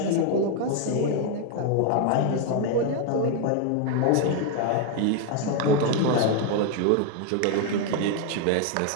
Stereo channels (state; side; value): different; both; correlation 0.01